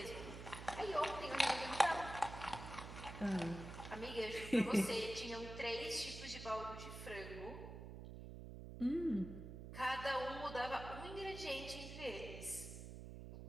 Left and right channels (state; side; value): noise; right; hum, 10 dB below the sound